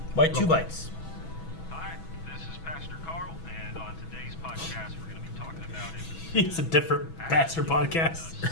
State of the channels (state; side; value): late; right; 6.1 ms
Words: Why 2 bites? Hi, this is Pastor Carl, and on today's podcast, we're going to be talking about It's a different Baxter podcast.